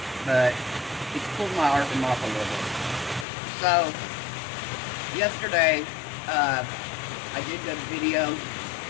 but it's pulled my art from off a little bit. So yesterday, I did a video.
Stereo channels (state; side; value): drops out; right; at 3.2 s